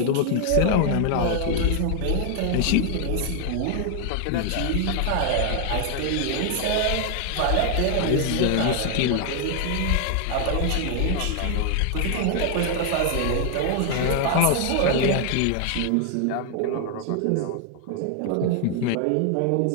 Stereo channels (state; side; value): different; both; correlation 0.00